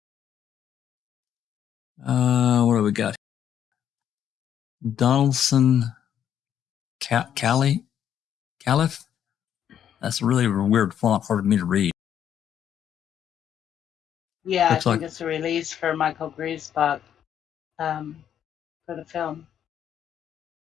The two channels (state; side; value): quieter; right; 9.5 dB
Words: What do we got? Donaldson Caliph? That's a really weird font, hard for me to read. Yeah, Looks I think like- it's a release for Michael Griesbach for the film.